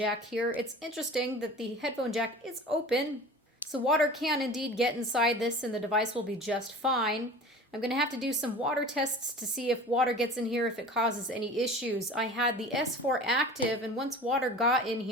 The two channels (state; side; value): normal; both; correlation 0.39